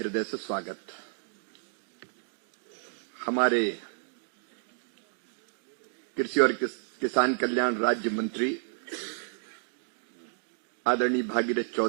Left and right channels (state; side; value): silent; left; digital silence